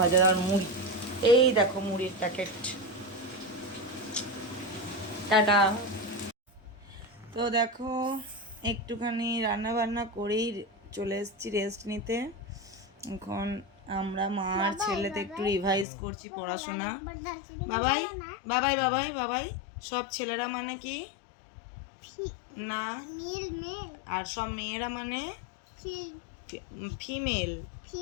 ভাজা আর মুড়ি, এই দেখো মুড়ির প্যাকেট। টাটা। তো দেখো একটুখানি রান্না বান্না করেই চলে এসেছি রেস্ট নিতে। এখন আমরা মা আর ছেলেতে একটু রিভাইজ করছি পড়াশোনা। বাবাই বাবাই বাবাই বাবাই, সব ছেলেরা মানে কি না, আর সব মেয়েরা মানে ফিমেল।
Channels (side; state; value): right; drops out; at 15.9 s